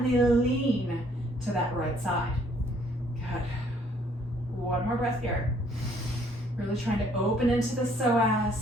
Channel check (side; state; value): both; normal; correlation 0.63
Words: lean to that right side. Good. One more breath here. Really trying to open into the